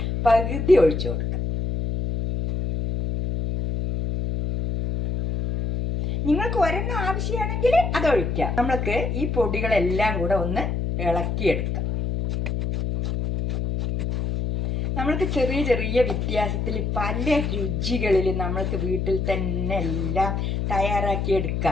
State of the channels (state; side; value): noise; left; hum, 1 dB below the sound